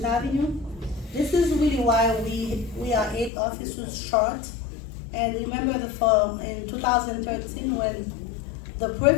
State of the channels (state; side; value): drops out; right; at 3.3 s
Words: Avenue. This is really why we are 8 officers short. And remember in 2013 when the